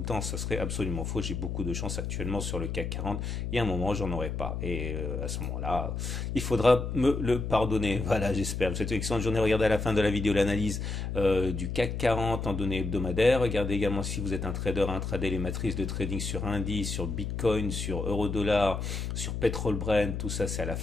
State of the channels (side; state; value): left; noise; hum, 3 dB below the sound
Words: le temps. Ça serait absolument faux. J'ai beaucoup de chance actuellement sur le CAC 40. Il y a un moment, j'en aurai pas. Et à ce moment-là, il faudra me le pardonner. Voilà, j'espère. Je vous souhaite une excellente journée. Regardez à la fin de la vidéo l'analyse du CAC 40 en données hebdomadaires. Regardez également si vous êtes un trader, intraday, les matrices de trading sur indice, sur Bitcoin, sur euro-dollar, sur pétrole Brent. Tout ça, c'est à la